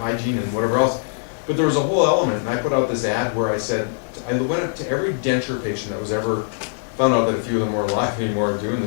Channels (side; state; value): right; silent; digital silence